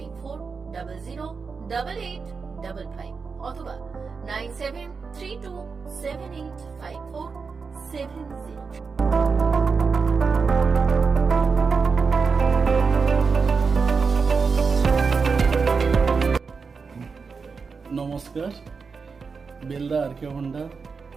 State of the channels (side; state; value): left; quieter; 5.1 dB